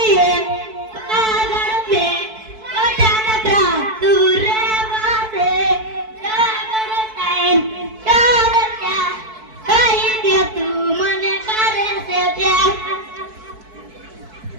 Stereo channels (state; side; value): late; left; 4.6 ms